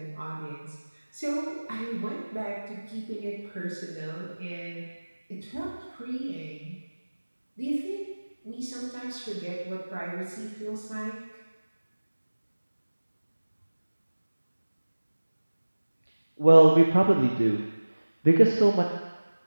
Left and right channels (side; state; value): both; inverted; correlation -1.00